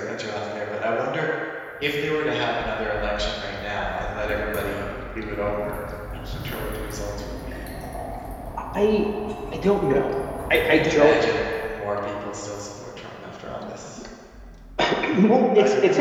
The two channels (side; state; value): both; identical; correlation 1.00